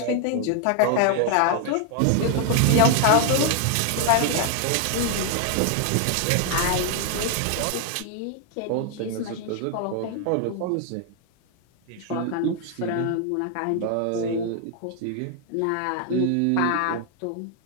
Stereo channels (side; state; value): both; different; correlation 0.00